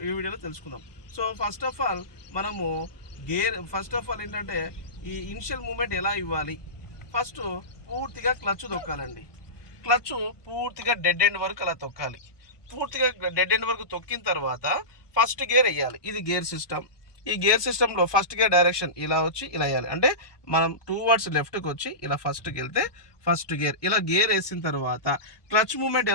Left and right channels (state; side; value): late; right; 1.2 ms